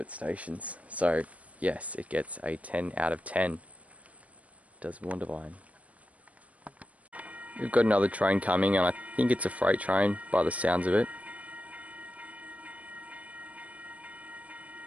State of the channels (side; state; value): left; late; 0.067 ms